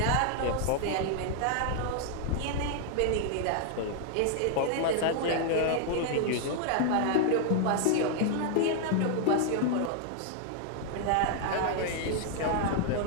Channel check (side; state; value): both; different; correlation 0.00